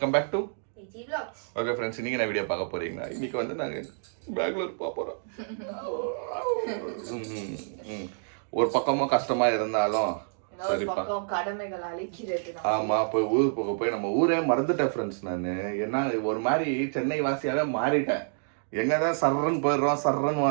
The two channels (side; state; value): left; silent; digital silence